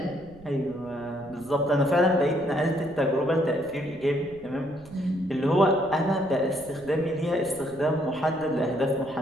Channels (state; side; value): noise; right; rumble, 23 dB below the sound